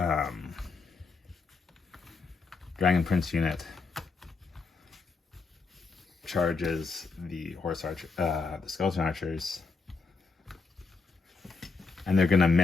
Dragon Prince unit charges the the Skeleton Archers, and they're gonna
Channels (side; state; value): right; quieter; 4.3 dB